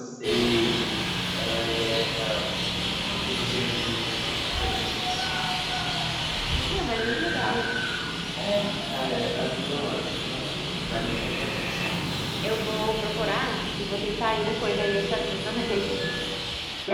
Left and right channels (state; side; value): identical; both; correlation 1.00